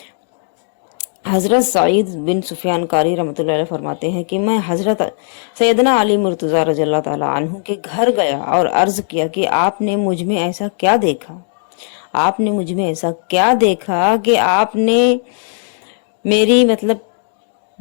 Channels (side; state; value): right; silent; digital silence